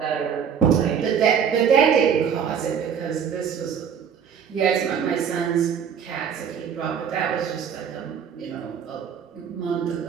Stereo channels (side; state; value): left; quieter; 7.6 dB